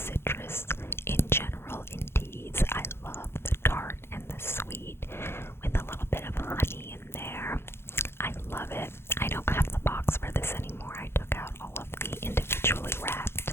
in general in teas. I love the tart and the sweet with a little bit of honey in there. I love it. I don't have the box for this anymore. I took out all of the individually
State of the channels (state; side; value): late; right; 0.12 ms